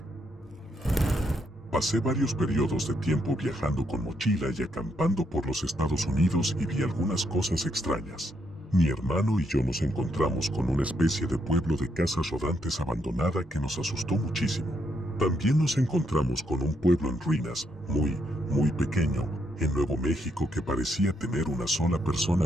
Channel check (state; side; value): normal; both; correlation 0.76